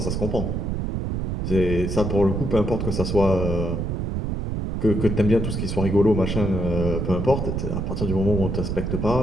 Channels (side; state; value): right; noise; rumble, 2 dB below the sound